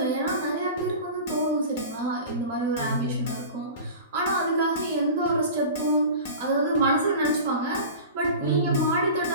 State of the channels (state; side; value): inverted; both; correlation -0.35